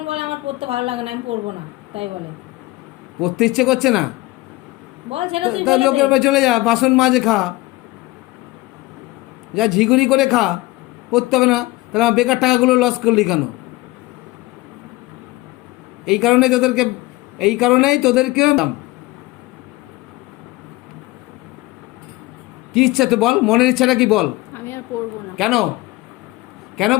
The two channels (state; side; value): quieter; right; 20.1 dB